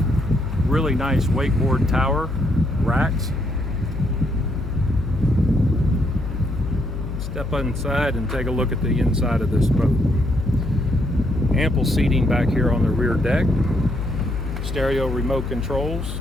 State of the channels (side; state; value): left; noise; hum, 5 dB below the sound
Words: Really nice wakeboard tower racks. Step inside and take a look at the inside of this boat. Ample seating back here on the rear deck. Stereo remote controls.